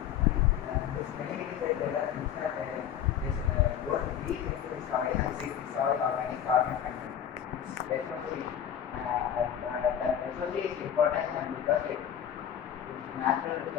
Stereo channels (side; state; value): right; quieter; 9.6 dB